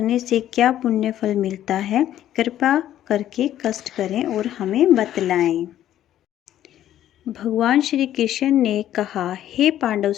से क्या पुण्य फल मिलता है, कृपा करके कष्ट करें और हमें बतलाएं। भगवान श्री कृष्ण ने कहा, हे पांडव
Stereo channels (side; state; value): right; quieter; 12.1 dB